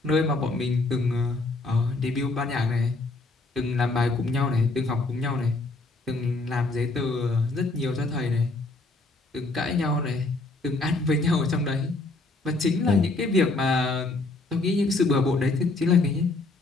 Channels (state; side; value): quieter; right; 3.2 dB